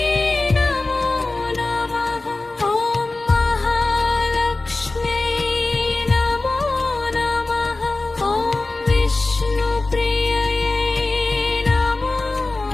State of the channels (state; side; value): quieter; right; 3.2 dB